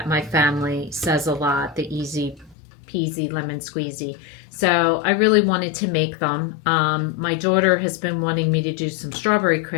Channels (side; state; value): right; drops out; at 2.6 s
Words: my family says a lot, the easy peasy lemon squeezy. So I really wanted to make them. My daughter has been wanting me to do some strawberry